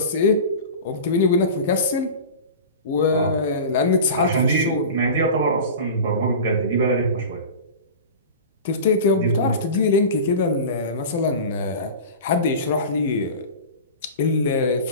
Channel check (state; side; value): inverted; both; correlation -0.32